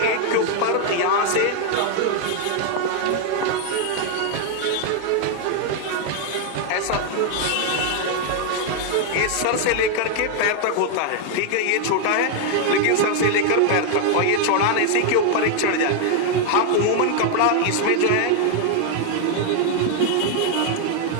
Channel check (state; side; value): different; both; correlation 0.00